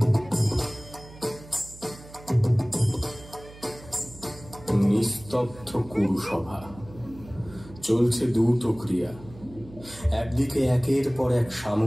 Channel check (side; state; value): right; noise; hum, 19 dB below the sound